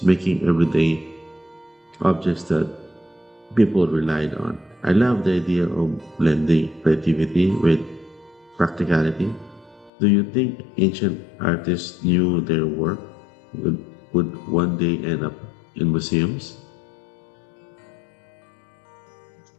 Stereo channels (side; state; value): right; drops out; at 9.9 s